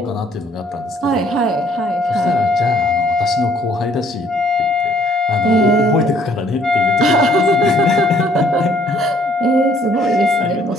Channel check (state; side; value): normal; both; correlation 0.62